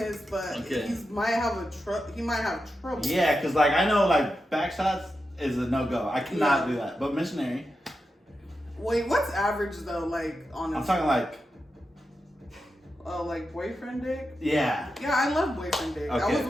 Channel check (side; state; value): both; normal; correlation 0.89